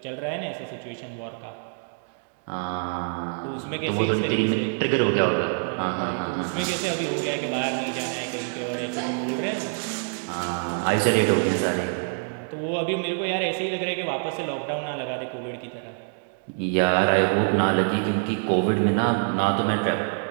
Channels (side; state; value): left; silent; 61 dB below the other